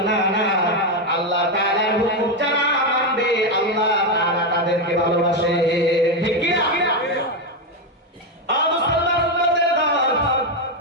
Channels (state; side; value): normal; both; correlation 0.07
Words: না না আল্লাহ তাআলার হুকুম যারা মানবে আল্লাহ তাআলা তাদেরকে ভালোবাসে ঠিক কি না